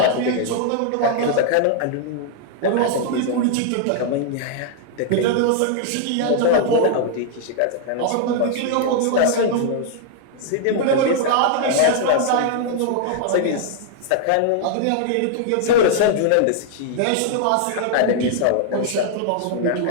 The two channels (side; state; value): both; different; correlation -0.01